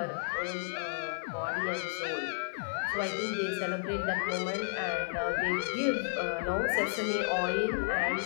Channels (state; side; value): silent; right; digital silence